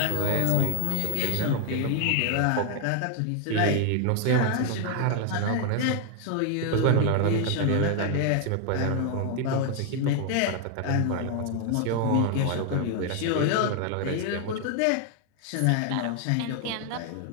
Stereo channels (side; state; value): both; different; correlation 0.00